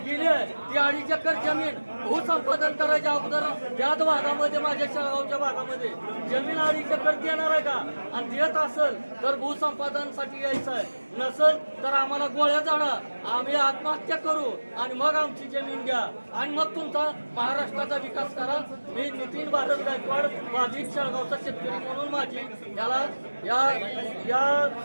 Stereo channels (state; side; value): inverted; both; correlation -1.00